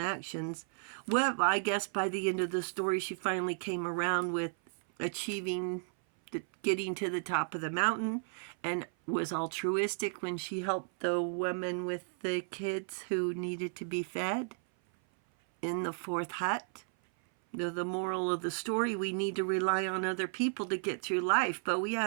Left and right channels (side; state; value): left; silent; 55 dB below the other